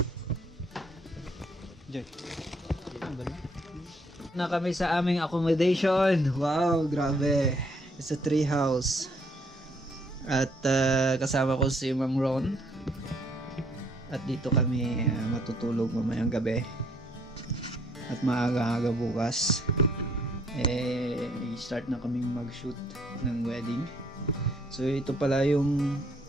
Joy. Na kami sa aming accommodation. Wow, grabe. It's a tree house. At kasama ko si Ma'am Ron. At dito kami matutulog mamayang gabi. At maaga-aga bukas. Start na kaming mag-shoot ng wedding. So ito pala yung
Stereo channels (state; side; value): normal; both; correlation 0.66